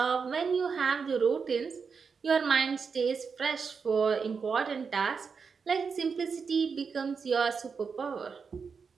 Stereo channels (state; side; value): quieter; left; 5.6 dB